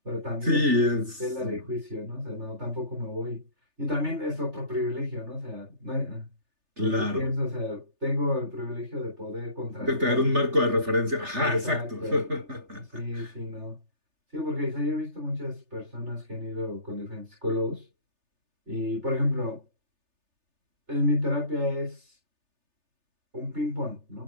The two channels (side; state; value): left; late; 3.3 ms